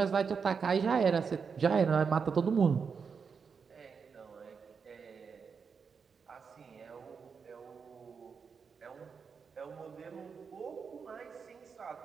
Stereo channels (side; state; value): left; quieter; 5.8 dB